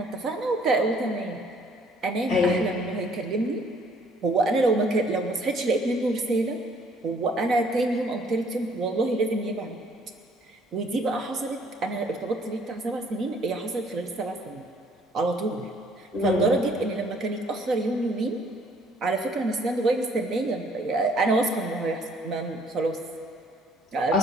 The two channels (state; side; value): normal; both; correlation 0.61